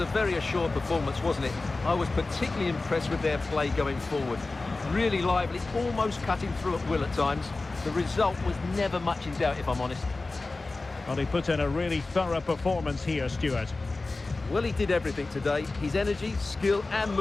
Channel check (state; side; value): quieter; right; 3.4 dB